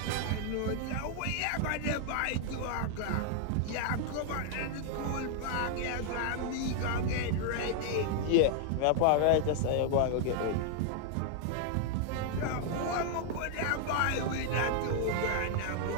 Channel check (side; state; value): both; different; correlation 0.00